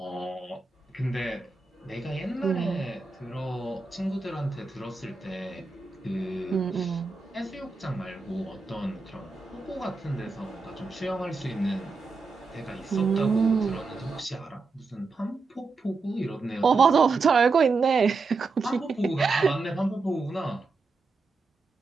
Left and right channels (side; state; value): left; quieter; 4.1 dB